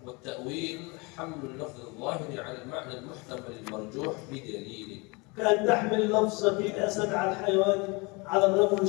والتأويل حمل اللفظ الظاهر على المعنى المحتمل المرجوح بدليل، كأن تحمل لفظة الأسد على الحيوان على الرجل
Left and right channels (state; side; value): quieter; right; 27.9 dB